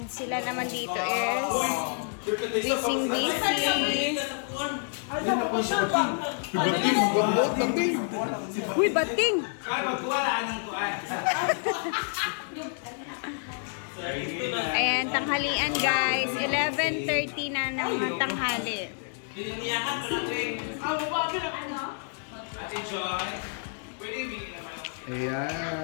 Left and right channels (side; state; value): right; silent; 57 dB below the other